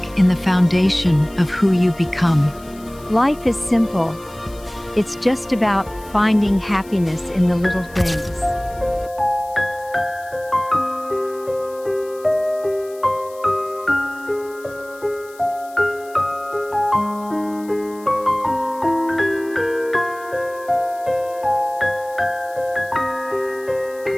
in the foundation of who you become. Life is simple. It's just about finding happiness in the little things.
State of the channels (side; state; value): left; noise; hiss, 23 dB below the sound